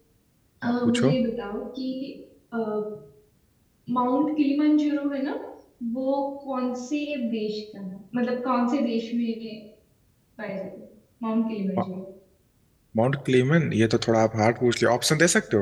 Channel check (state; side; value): identical; both; correlation 1.00